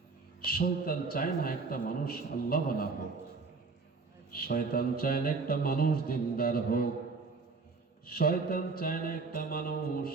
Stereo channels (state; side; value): quieter; left; 4.4 dB